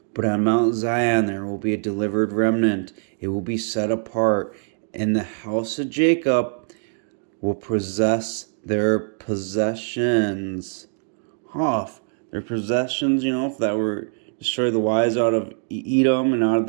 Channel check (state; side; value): silent; left; digital silence